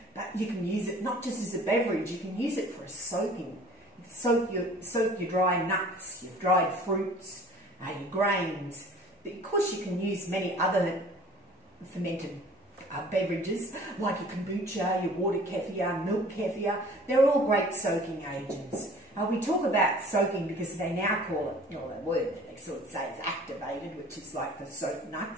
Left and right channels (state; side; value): normal; both; correlation 0.48